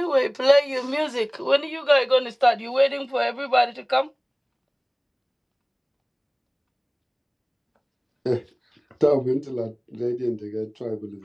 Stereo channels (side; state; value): both; identical; correlation 1.00